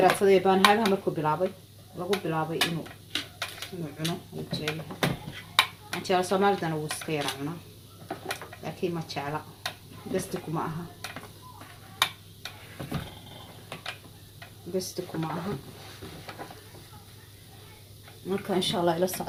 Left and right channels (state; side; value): identical; both; correlation 1.00